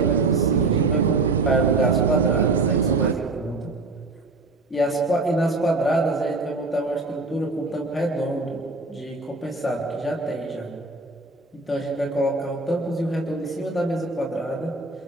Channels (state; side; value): quieter; left; 3.4 dB